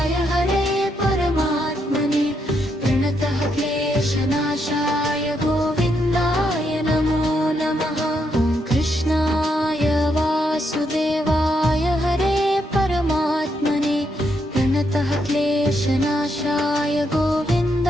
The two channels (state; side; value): normal; both; correlation 0.78